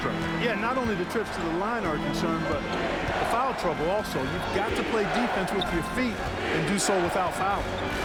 Yeah, not only the trips to the line are concerned, but the foul trouble also. You've got to play defense with your feet and do so without fouling.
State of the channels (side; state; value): both; identical; correlation 1.00